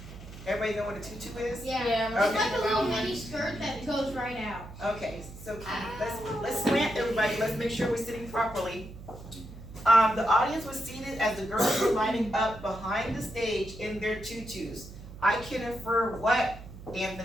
Everybody know what a tutu is? Yeah. Yeah. It's Okay. like a little mini skirt that goes right out. Okay, so let's slant everybody, let's make sure we're sitting properly. The audience was seated as the girls were lining up behind the stage in their tutus. I can infer what,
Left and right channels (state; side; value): noise; right; hum, 15 dB below the sound